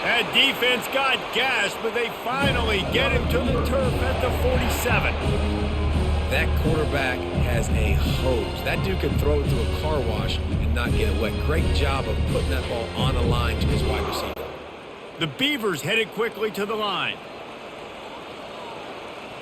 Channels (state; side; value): identical; both; correlation 1.00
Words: That defense got gashed, but they finally get him to the turf at the 47. That quarterback has a hose. That dude can throw it to a car wash and not get it wet. Great job of putting that ball on a line to his wide receiver. The Beavers headed quickly to the line.